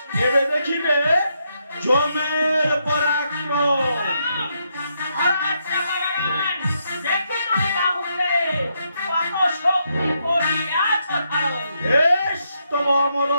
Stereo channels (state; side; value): inverted; both; correlation -0.79